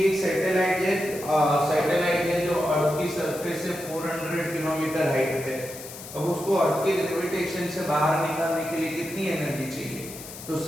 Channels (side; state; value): left; noise; hiss, 13 dB below the sound